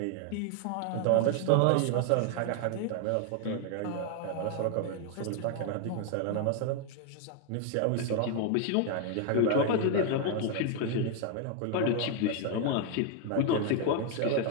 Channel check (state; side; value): different; both; correlation 0.01